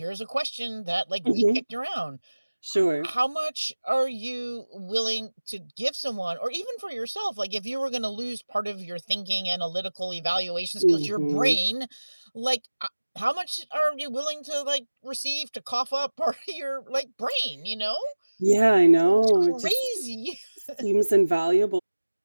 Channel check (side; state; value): both; inverted; correlation -1.00